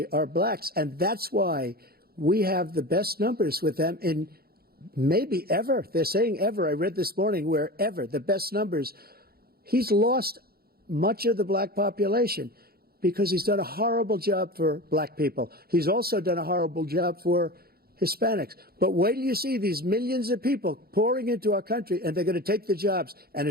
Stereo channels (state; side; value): late; left; 0.45 ms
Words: are blacks. And that's why we have the best numbers with them in maybe ever. They're saying ever. I read this morning where ever, the best numbers. He's lost much of the black population because he's done a horrible job for black people. He's also done a horrible job for Hispanics. But wait till you see these millions of people pouring into our country, and they're going to take the jobs, and